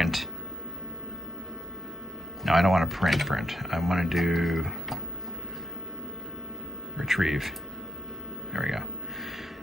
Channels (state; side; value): normal; both; correlation 0.82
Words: No, I don't want to print. I want to do retrieve. There we go.